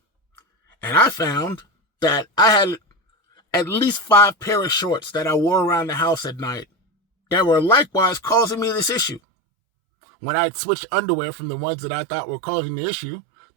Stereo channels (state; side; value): drops out; left; at 9.2 s